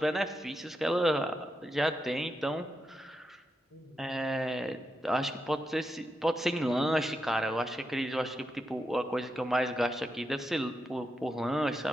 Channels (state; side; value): normal; both; correlation 0.85